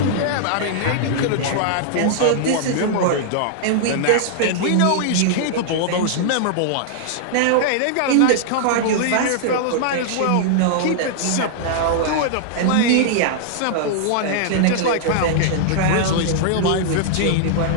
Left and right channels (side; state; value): both; different; correlation -0.01